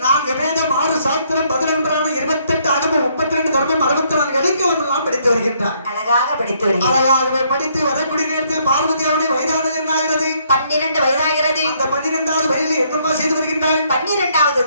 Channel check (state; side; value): inverted; both; correlation -0.69